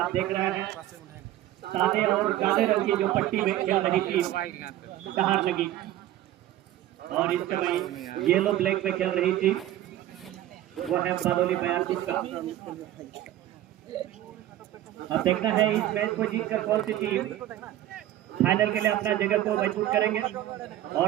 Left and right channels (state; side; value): quieter; left; 13.6 dB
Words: देख रहे हैं सादे और काले रंग की जो पट्टी में खेल रही थी बाहर लगी और इस समय येलो ब्लैक में खेल रही थी वो है बादोली बयारपुर का। अब देखना है इस मैच को जीतकर कौन सी टीम फाइनल के लिए अपना जगह को मजबूत करेंगे और